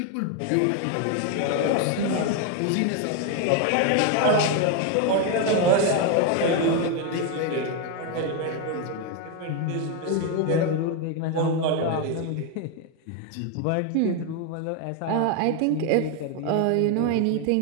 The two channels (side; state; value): both; different; correlation 0.01